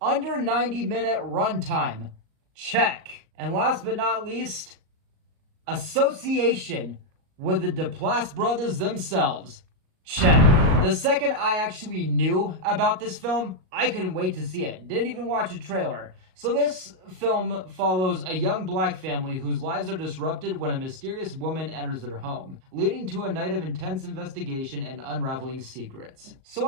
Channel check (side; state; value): left; late; 38 ms